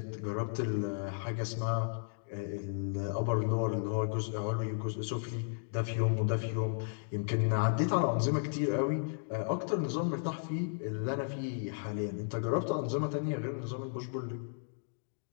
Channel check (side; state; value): right; silent; digital silence